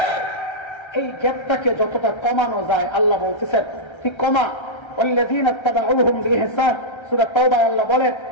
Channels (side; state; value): right; late; 1.3 ms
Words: এই গ্যাপটাকে যতটা কমানো যায়, আল্লাহ বলতেছেন ঠিক কমা। ওয়াল্লাযীনা ইত্তাবাউহুম বিইহসান, সূরা তাওবায় আল্লাহ বলেন